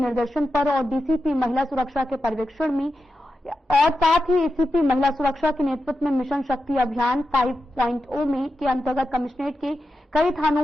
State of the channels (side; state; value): both; normal; correlation 0.90